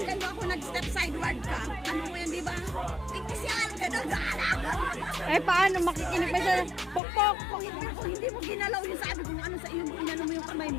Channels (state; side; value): drops out; right; at 7.0 s